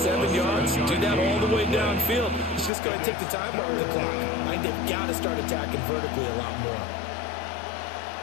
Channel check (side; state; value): right; drops out; at 2.7 s